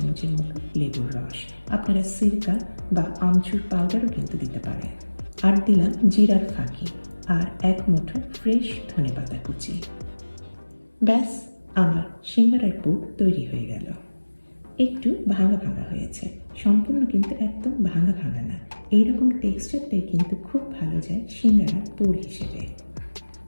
মতো লেবুর রস। আপনারা সিরকা বা আমচুর পাউডারও কিন্তু দিতে পারেন। আর দিলাম জিরার ফাঁকি আর 1 মুঠো ফ্রেশ ধনেপাতা কুচি। ব্যাস, আমার সিঙ্গারার পুর তৈরি হয়ে গেল। একটু ভাঙা ভাঙা হয়েছে, সম্পূর্ণ কিন্তু একদম ভাঙা ভাঙা না। এইরকম টেক্সচারটাই কিন্তু খুব ভালো যায় সিঙ্গারার পুর হিসেবে।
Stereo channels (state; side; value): inverted; both; correlation -1.00